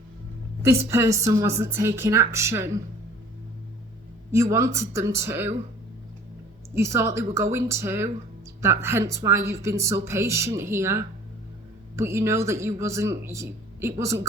This person wasn't taking action. You wanted them to. You thought they were going to. Hence why you've been so patient here. But you know that it wasn't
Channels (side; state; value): both; normal; correlation 0.50